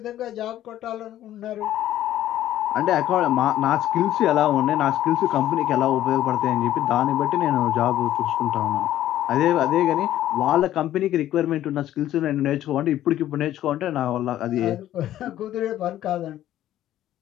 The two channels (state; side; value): quieter; right; 12.8 dB